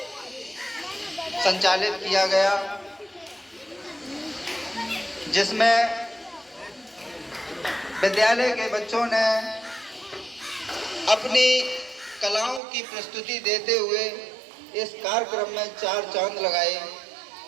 संचालित किया गया, जिसमें विद्यालय के बच्चों ने अपनी कलाओं की प्रस्तुति देते हुए इस कार्यक्रम में 4 चांद लगाए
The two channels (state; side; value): drops out; left; at 12.6 s